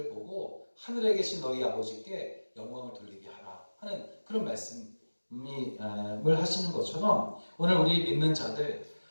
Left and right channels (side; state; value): both; inverted; correlation -1.00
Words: 보고 하늘에 계신 너희 아버지께 영광을 돌리게 하라 하는 그런 말씀을 하시는 것처럼 오늘 우리 믿는 자들